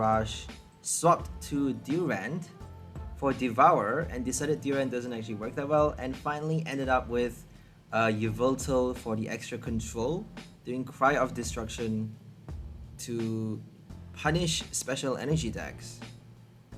swapped to Durant for Devour, and decided Durant doesn't actually work that well, and finally ended up with yveltal for the extra control, doing Cry of Destruction to punish special energy decks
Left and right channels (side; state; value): both; identical; correlation 1.00